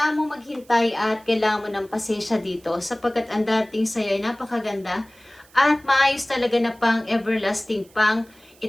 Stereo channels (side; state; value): right; noise; hiss, 28 dB below the sound